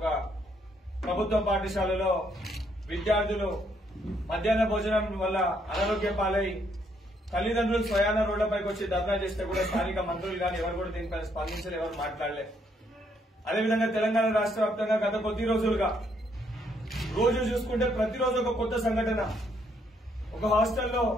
ప్రభుత్వ పాఠశాలలో విద్యార్థులు మధ్యాహ్న భోజనం వల్ల అనారోగ్య పాలై తల్లిదండ్రులు స్వయాన రోడ్లపైకి వచ్చి ధర్నా చేస్తే కూడా స్థానిక మంత్రులు కానీ ఎవరు కూడా దీనిపై స్పందించలే, ఎవరు మాట్లాడలే. అదేవిధంగా తెలంగాణ రాష్ట్ర వ్యాప్తంగా గత కొద్ది రోజులుగా రోజు చూసుకుంటే ప్రతిరోజు ఒక కొత్త సంఘటన. ఒక హాస్టల్లో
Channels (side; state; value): both; normal; correlation 0.71